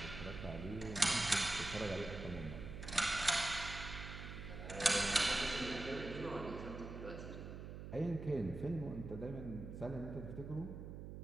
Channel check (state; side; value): noise; right; hum, 9 dB below the sound